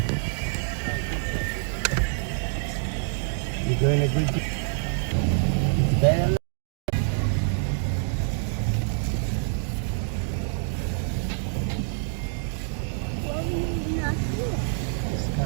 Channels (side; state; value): left; silent; digital silence